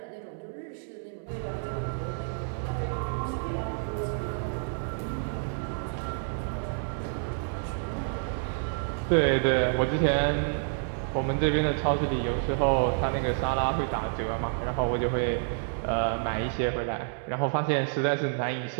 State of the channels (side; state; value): left; silent; 59 dB below the other